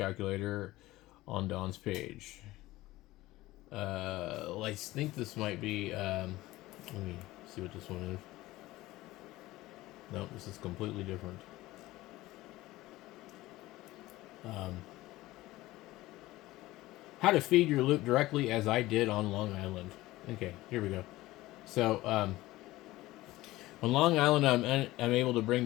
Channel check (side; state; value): right; quieter; 17.8 dB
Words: on Don's page. I think this might be. Let me see what this one is. Nope, this is completely different. How to feed your loop directly as I did on Long Island. Okay, here we go. So, on Long Island, I'm able to bring